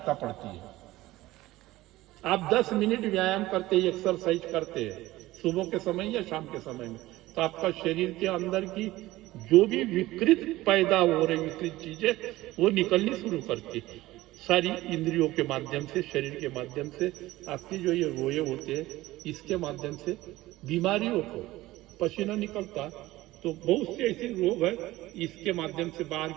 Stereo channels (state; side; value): quieter; left; 17.5 dB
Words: पड़ती है। आप 10 मिनट व्यायाम करते हैं, एक्सरसाइज करते हैं सुबह के समय या शाम के समय में, तो आपका शरीर के अंदर की जो भी विकृत पैदा हो रही विकृत चीजें वो निकलनी शुरू करती है। सारी इंद्रियों के माध्यम से, शरीर के माध्यम से, आपकी जो ये रोए होते हैं इसके माध्यम से बीमारियों को, पसीना निकलता तो बहुत से ऐसे रोग है इसके माध्यम से बाहर